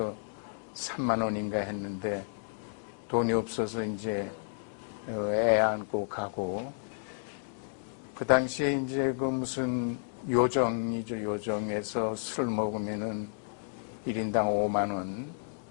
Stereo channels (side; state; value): right; silent; digital silence